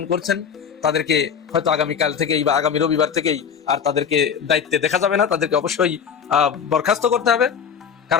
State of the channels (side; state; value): right; quieter; 7.2 dB